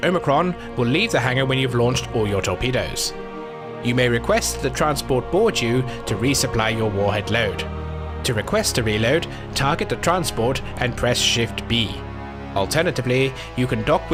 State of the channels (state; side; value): identical; both; correlation 1.00